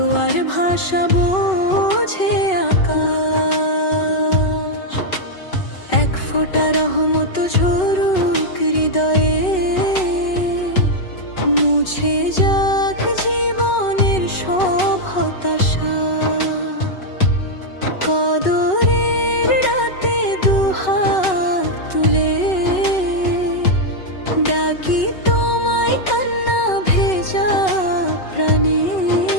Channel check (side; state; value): right; late; 5.3 ms